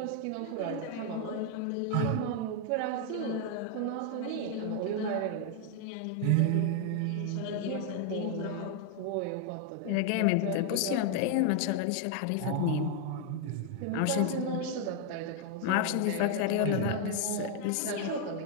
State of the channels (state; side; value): different; both; correlation 0.00